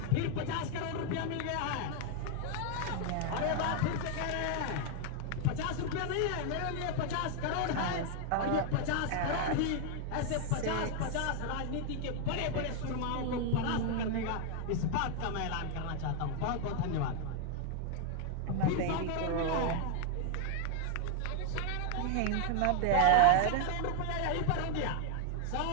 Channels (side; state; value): both; different; correlation 0.00